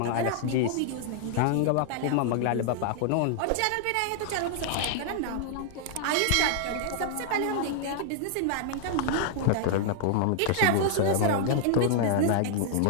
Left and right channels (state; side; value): different; both; correlation -0.01